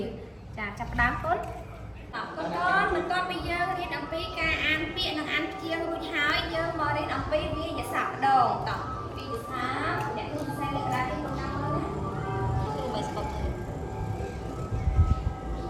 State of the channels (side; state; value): both; identical; correlation 1.00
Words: ចាចាប់ផ្ដើមកូនបន្ទាប់ពីយើងរៀនអំពីការអានពាក្យនិងអានព្យាង្គរួចហើយយើងមករៀនអំពីវាក្យសព្ទម្ដងតោះវាក្យសព្ទអ្នកគ្រូសរសេរលើក្តារនេះកូនតាមមើលណាគ្រូមិនស្គាល់ទេឥ